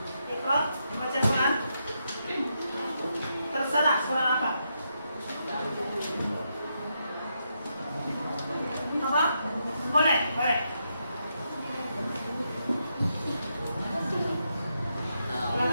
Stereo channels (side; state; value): both; inverted; correlation -0.82